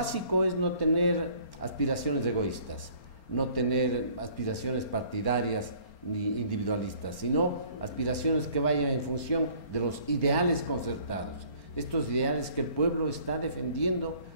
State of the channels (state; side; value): late; right; 4.4 ms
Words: es no tener aspiraciones egoístas, no tener aspiraciones partidarias ni individualistas, sino aspiraciones que vayan en función de los ideales concertados, estos ideales que el pueblo está defendiendo